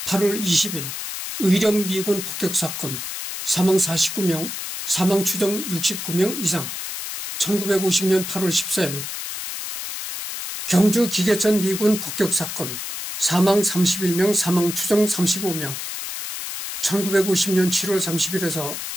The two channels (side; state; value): left; noise; hiss, 6 dB below the sound